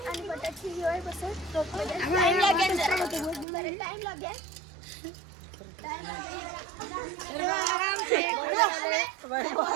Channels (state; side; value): drops out; left; at 3.5 s